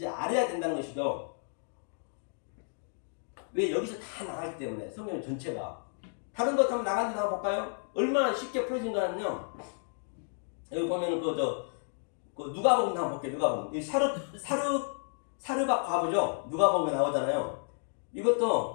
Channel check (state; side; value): silent; right; digital silence